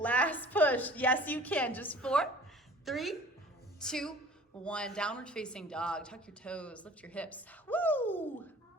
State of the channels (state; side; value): normal; both; correlation 0.47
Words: push, yes you can, just 4, 3, 2, 1, downward facing dog, tuck your toes, lift your hips, woo!